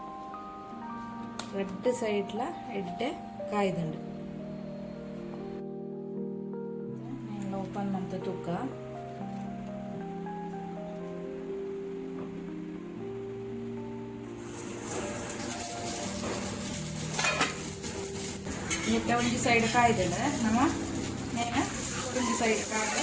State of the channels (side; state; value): both; identical; correlation 1.00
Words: ರೆಡ್ ಸೈಡ್ಲ ಎಡ್ಡೆ ಕಾಯ್ದುಂಡು ಓಪನ್ ಮಾಡ್ತ ತೂಕ ಇದಕ್ಕೆ ಒಂದು ಸೈಡ್ ಕಾಯ್ದಲ್ಲ ನಮ್ಮ ನೇನ ಒಂದು ಸೈಡ್ ಕಾಯ್ದು